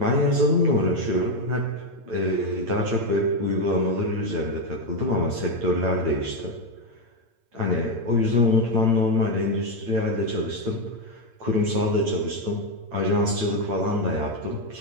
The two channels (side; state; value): left; late; 8.7 ms